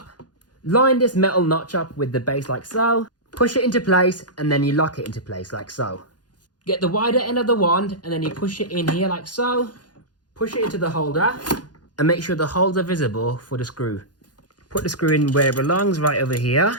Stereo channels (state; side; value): late; right; 0.69 ms